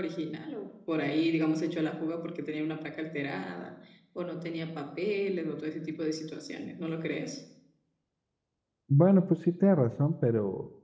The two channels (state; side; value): identical; both; correlation 1.00